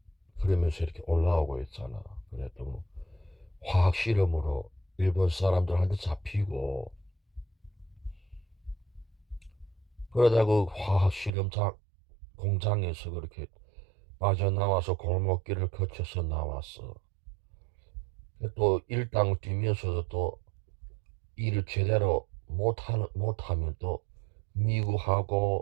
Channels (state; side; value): drops out; left; at 11.3 s